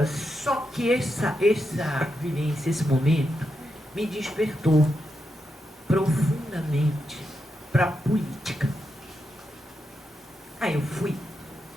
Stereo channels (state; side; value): normal; both; correlation 0.85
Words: só que essa vivência, esse momento, me despertou profundamente para a política. Aí eu fui